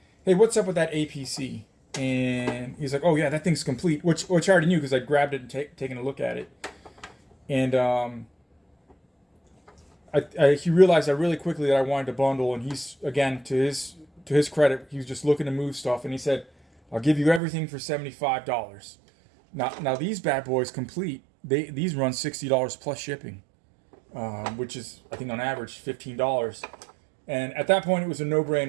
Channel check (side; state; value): left; drops out; at 17.4 s